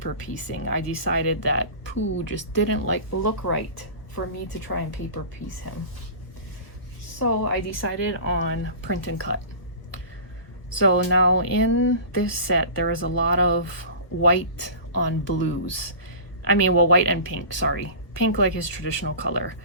piecing, I decided that Pooh just didn't look right for me to try and paper piece him. So I decided on print and cut. So now in this set, there is a lot of white on blues. I mean, well, white and pink, sorry. Pink like his traditional color.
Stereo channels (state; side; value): late; right; 1.3 ms